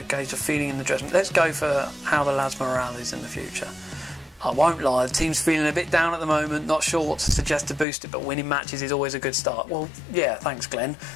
gauge of feeling in the dressing room. Let's go for how the lads' morale is in the future. I won't lie, the team's feeling a bit down at the moment, not sure what to suggest to boost it, but winning matches is always a good start. Well, yeah, thanks Glenn.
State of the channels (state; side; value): drops out; right; at 7.9 s